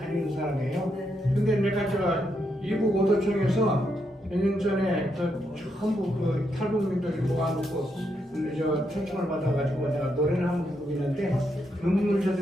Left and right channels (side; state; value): both; normal; correlation 0.80